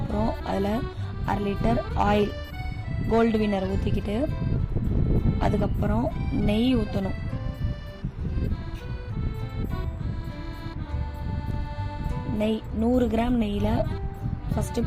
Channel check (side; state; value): both; identical; correlation 1.00